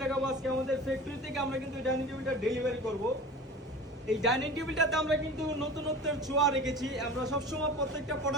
দেখাবো আজকে আমাদের ফ্যাক্টরি থেকে। আমরা কিন্তু এই ডাইনিং টেবিলটা ডেলিভারি করব। এই ডাইনিং টেবিলটাতে আমরা কিন্তু নতুনত্বের ছোঁয়া রেখেছি। আমরা সবসময় প্রত্যেকটা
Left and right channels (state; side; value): normal; both; correlation 0.37